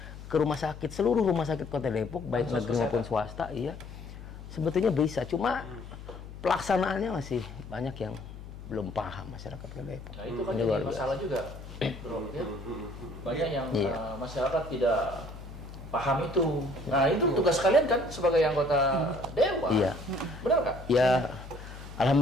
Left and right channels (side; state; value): left; noise; hum, 13 dB below the sound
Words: ke rumah sakit, seluruh rumah sakit Kota Depok baik negeri maupun swasta, iya sebetulnya bisa, cuma pelaksanaannya masih banyak yang belum paham masyarakat Kota Depok. Nah itu kan jadi masalah juga, bro. Ya? Banyak yang masyarakat tidak paham itu. Nah itu tugas kalian kan sebagai anggota dewan. Iya. Benar nggak? Ya,